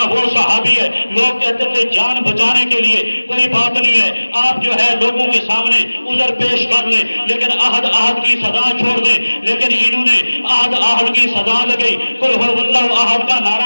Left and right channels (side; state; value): both; inverted; correlation -1.00